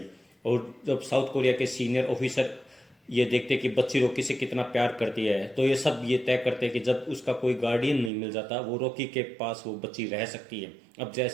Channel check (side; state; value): left; drops out; at 8.1 s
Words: और जब साउथ कोरिया के सीनियर ऑफिसर ये देखते कि बच्ची रॉकी से कितना प्यार करती है, तो ये सब ये तय करते हैं कि जब उसका कोई गार्डियन नहीं मिल जाता, वो रॉकी के पास वो बच्ची रह सकती है। अब